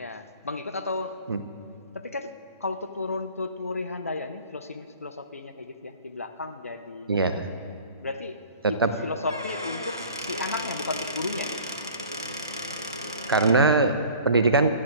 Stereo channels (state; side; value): inverted; both; correlation -0.46